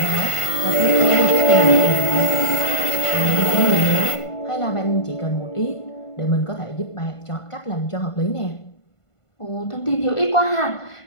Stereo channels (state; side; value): late; right; 1.5 ms